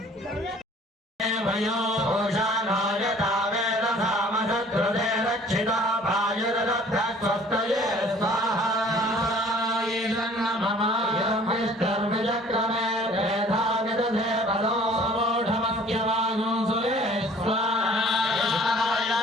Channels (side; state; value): both; normal; correlation 0.53